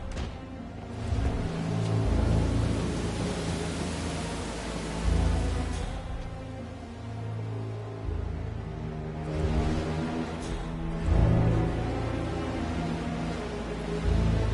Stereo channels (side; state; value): both; identical; correlation 1.00